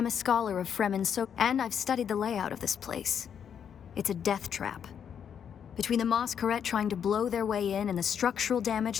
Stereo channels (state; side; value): quieter; right; 8.1 dB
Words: a scholar of Fremen, and I've studied the layout of this place. It's a death trap. Between the Mosqueret trying to blow their way in and the structural damage